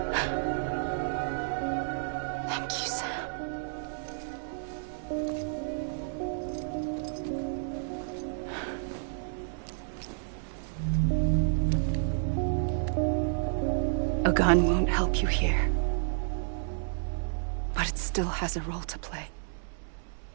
Thank you, Sam. A gun won't help you here. But it still has a role to play.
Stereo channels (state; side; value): silent; left; 57 dB below the other